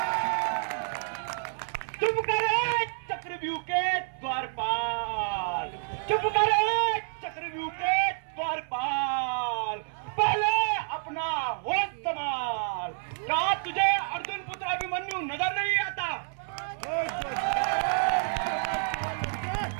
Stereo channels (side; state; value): left; silent; 59 dB below the other